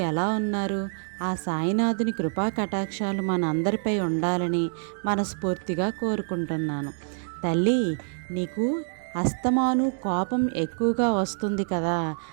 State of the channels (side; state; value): left; silent; 61 dB below the other